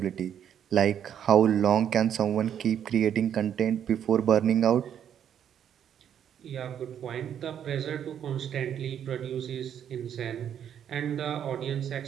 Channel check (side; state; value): left; quieter; 9.2 dB